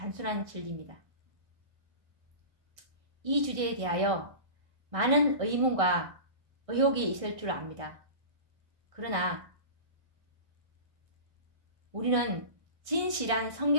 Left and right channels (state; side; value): late; left; 1.6 ms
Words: 진리입니다. 이 주제에 대하여 많은 의문과 의혹이 있을 줄 압니다. 그러나 우리는 진실한